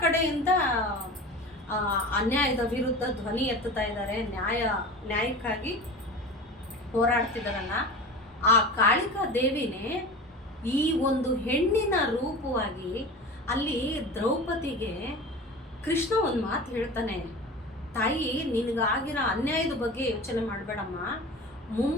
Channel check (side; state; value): both; normal; correlation 0.34